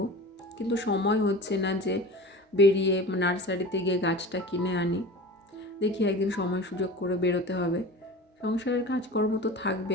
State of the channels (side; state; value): both; normal; correlation 0.35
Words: কিন্তু সময় হচ্ছে না যে বেরিয়ে নার্সারিতে গিয়ে গাছটা কিনে আনি। দেখি একদিন সময় সুযোগ করে বেরোতে হবে। সংসারের কাজকর্ম তো